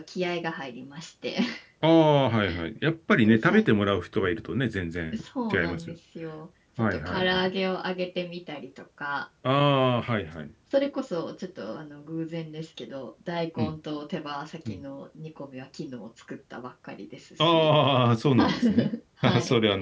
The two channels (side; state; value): both; identical; correlation 1.00